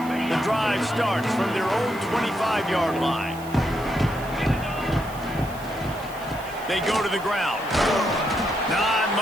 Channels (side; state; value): right; noise; hiss, 19 dB below the sound